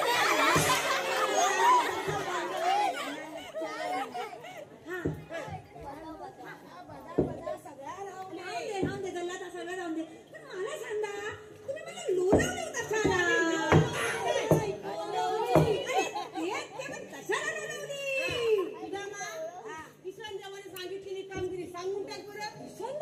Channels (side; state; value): both; identical; correlation 1.00